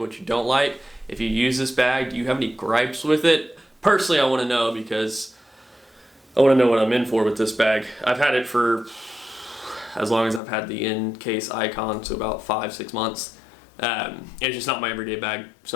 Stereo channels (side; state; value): right; drops out; at 10.4 s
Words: you don't like. If you use this bag, do you have any gripes with it? Personally, I want to know, because I want to know what I'm in for with this bag. I've had it for as long as I've had the in-case Icon, so about 5-6 months. It's just not my everyday bag,